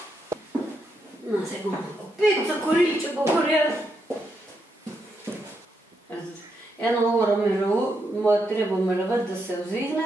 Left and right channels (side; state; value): both; normal; correlation 0.81